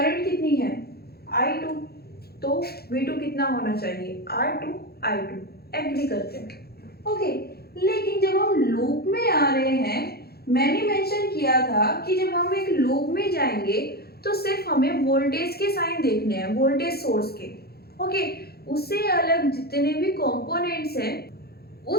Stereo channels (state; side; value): late; right; 0.46 ms